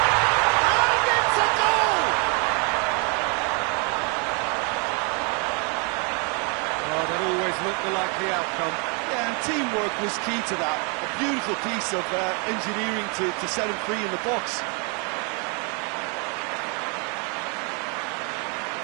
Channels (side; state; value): left; quieter; 35.3 dB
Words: And it's a goal! Oh, that always looked the likely outcome. Yeah, and teamwork was key to that. A beautiful piece of engineering to set him free in the box.